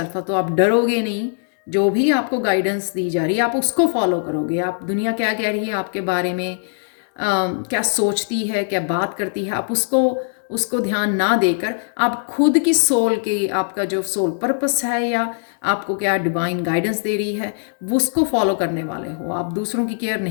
है। तो आप डरोगे नहीं, जो भी आपको गाइडेंस दी जा रही है आप उसको फॉलो करोगे। आप दुनिया क्या कह रही है आपके बारे में, क्या सोचती है, क्या बात करती है, आप उसको ध्यान ना देकर आप खुद की सोल की, आपका जो सोल पर्पस है या आपको क्या डिवाइन गाइडेंस दे रही है, वो उसको फॉलो करने वाले हो। आप दूसरों की केयर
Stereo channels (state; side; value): silent; right; digital silence